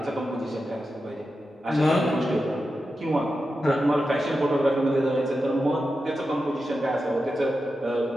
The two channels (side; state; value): both; normal; correlation 0.90